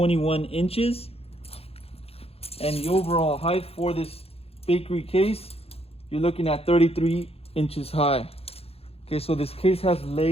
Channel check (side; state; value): right; late; 0.29 ms